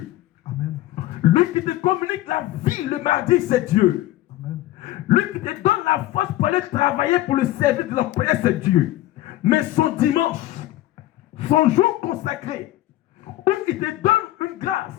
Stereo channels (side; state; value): right; quieter; 15.6 dB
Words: Amen. Lui qui te communique la vie le mardi, c'est Dieu. Amen. Lui qui te donne la force pour aller travailler pour le service de l'employé, c'est Dieu. Mais son dimanche, son jour consacré, où il te donne une grâce